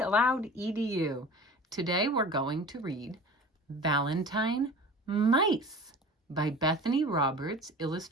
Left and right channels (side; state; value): both; normal; correlation 0.39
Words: Edu. Today we're going to read Valentine Mice by Bethany Roberts,